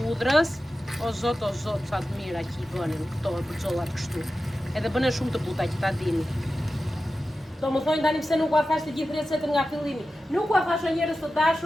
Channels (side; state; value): both; normal; correlation 0.93